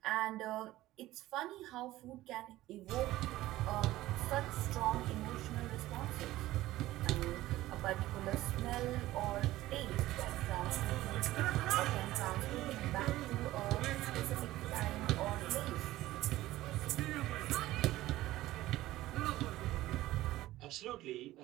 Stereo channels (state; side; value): quieter; left; 16.2 dB